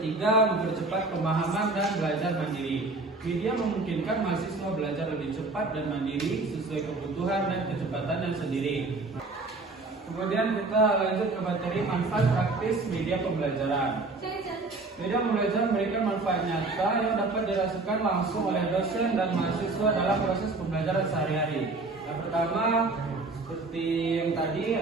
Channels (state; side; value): quieter; left; 3.4 dB